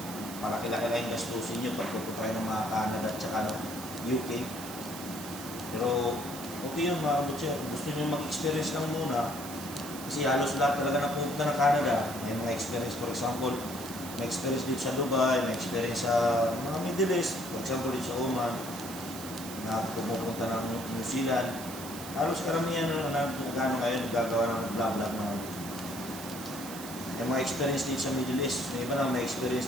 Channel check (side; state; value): right; noise; hiss, 11 dB below the sound